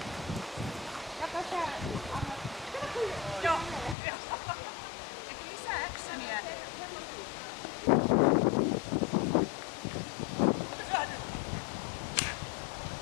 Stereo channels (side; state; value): right; drops out; at 4.0 s